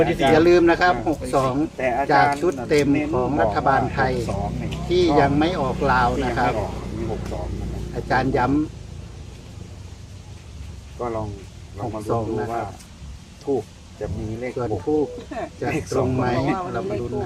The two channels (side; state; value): both; identical; correlation 1.00